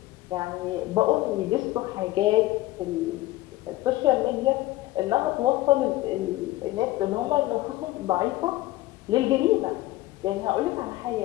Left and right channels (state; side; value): quieter; right; 17.3 dB